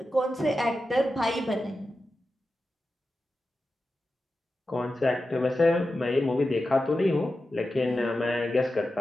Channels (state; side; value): normal; both; correlation 0.92